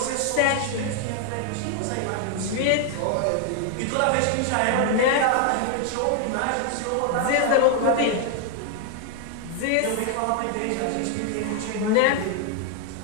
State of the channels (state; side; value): different; both; correlation 0.00